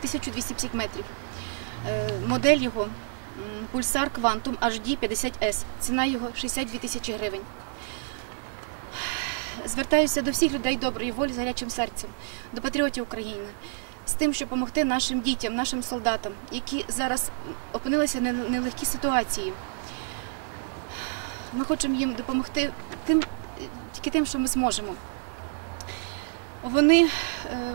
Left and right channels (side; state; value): left; silent; digital silence